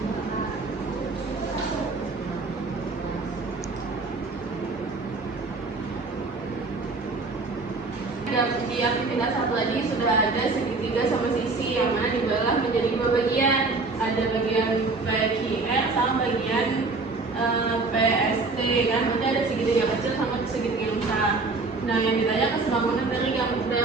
Di aktivitas satu lagi sudah ada segitiga sama sisi yang mana dibelah menjadi dua bagian. Ada bagian PQR sama bagian PST kan. Nanti ada segitiga kecil sama segitiga yang besar. Nah, yang ditanya kesebangunan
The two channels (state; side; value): quieter; left; 3.7 dB